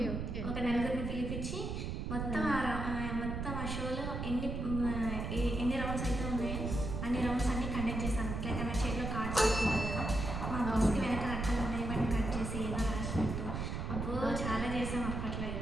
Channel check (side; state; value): right; noise; rumble, 3 dB below the sound